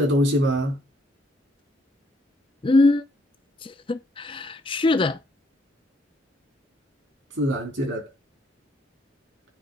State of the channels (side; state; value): both; normal; correlation 0.70